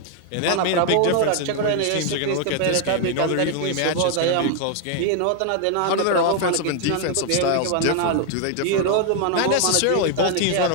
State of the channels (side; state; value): both; different; correlation 0.00